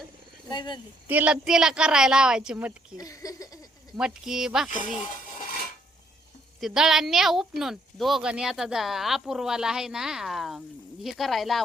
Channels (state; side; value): normal; both; correlation 0.70